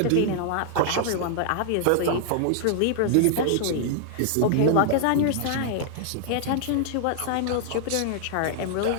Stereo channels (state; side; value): different; both; correlation -0.01